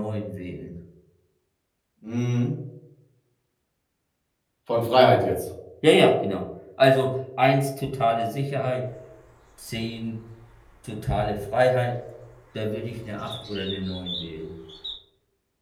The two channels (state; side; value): identical; both; correlation 1.00